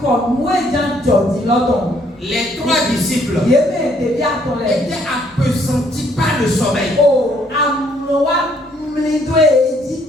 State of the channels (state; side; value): normal; both; correlation 0.66